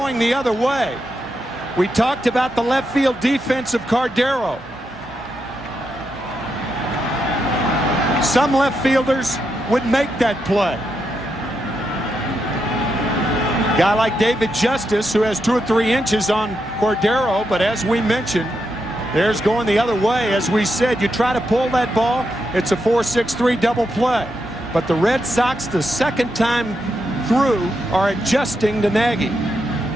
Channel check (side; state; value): both; normal; correlation 0.84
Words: the other way. We talked about the left field defense of Cordero. Some left fielders would make that play. Guy like David Justice, who has 2 or 3 inches on Cordero, but as we mentioned, there's going the other way. As we said, you try to pull that ball, it's a 4-6-3 double play. But the Red Sox, the second time through, are adjusting to Nagy.